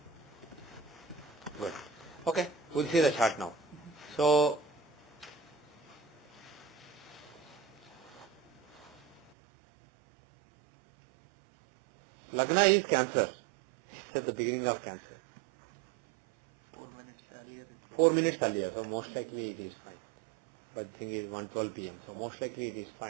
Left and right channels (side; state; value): left; drops out; at 9.3 s